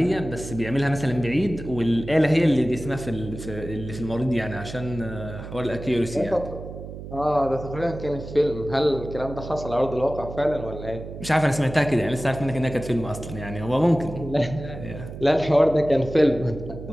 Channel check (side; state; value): right; noise; hum, 11 dB below the sound